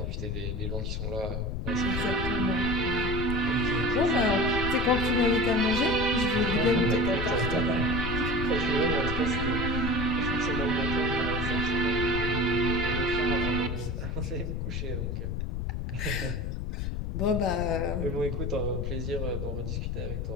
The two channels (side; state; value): left; noise; rumble, 2 dB below the sound